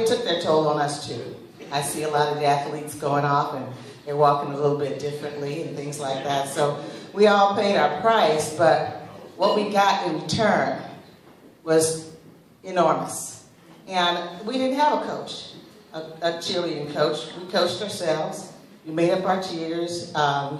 took their toll on us too. I see a lot of the athletes going off and they're walking a little bit differently and things like that. So we all paid our price, but what we got in return was enormous. And we didn't have a coach, a cheerleading coach. We coached ourselves. We made up our cheers.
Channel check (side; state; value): both; identical; correlation 1.00